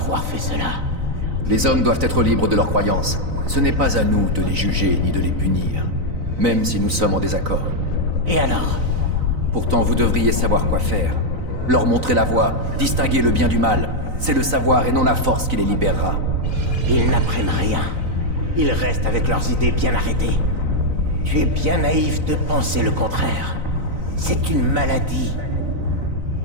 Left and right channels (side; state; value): left; late; 3.9 ms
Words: fait cela? Les hommes doivent être libres de leurs croyances. Ce n'est pas à nous de les juger ni de les punir, même si nous sommes en désaccord. Et alors? Pourtant, vous devriez savoir quoi faire. Leur montrer la voie, distinguer le bien du mal. C'est le savoir et non la force qui les libérera. Ils n'apprennent rien. Ils restent avec leurs idées bien arrêtées. Tu es bien naïf de penser le contraire. C'est une maladie.